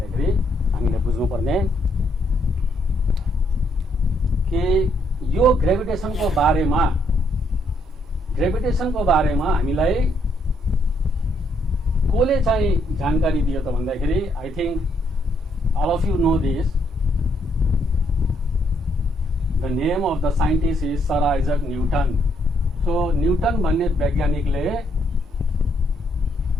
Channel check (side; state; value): both; normal; correlation 0.73